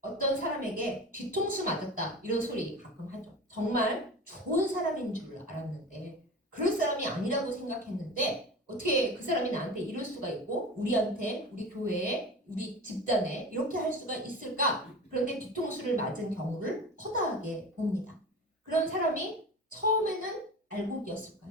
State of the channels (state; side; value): normal; both; correlation 0.33